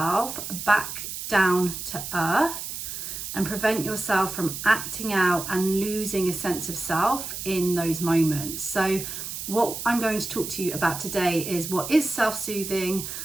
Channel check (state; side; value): noise; right; hiss, 7 dB below the sound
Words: back down to earth and prevent yourself from acting out and losing a sense of self in those moments? So what I'm going to talk to you about today is what is self-soothing,